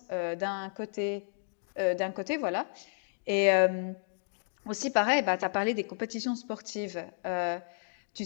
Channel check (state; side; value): silent; right; digital silence